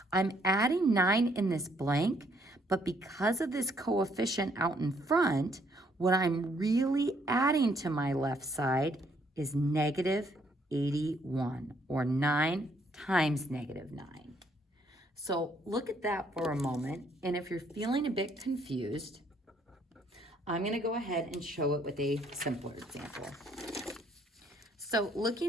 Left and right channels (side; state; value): both; normal; correlation 0.68